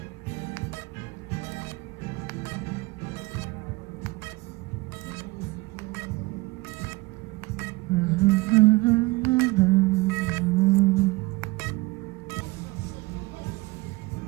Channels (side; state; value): left; quieter; 21.8 dB